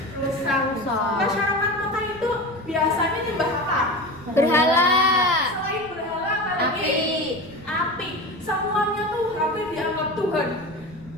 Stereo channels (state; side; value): noise; right; rumble, 21 dB below the sound